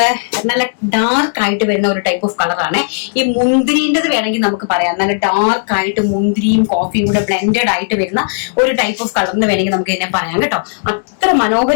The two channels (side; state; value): right; silent; digital silence